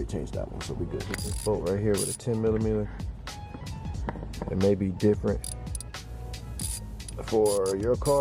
changed that one, so we good. This bolt right here with a 10mm. It may be different for your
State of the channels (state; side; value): identical; both; correlation 1.00